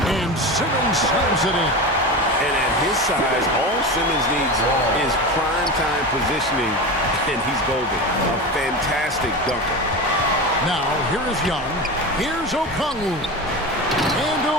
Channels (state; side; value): normal; both; correlation 0.25